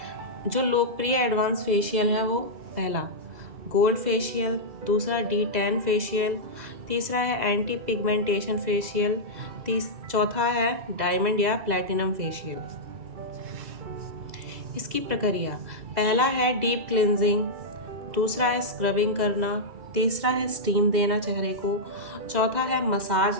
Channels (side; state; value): left; late; 2.0 ms